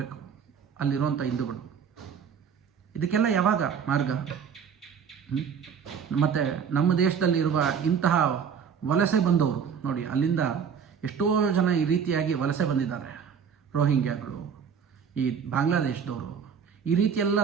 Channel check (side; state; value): left; quieter; 7.1 dB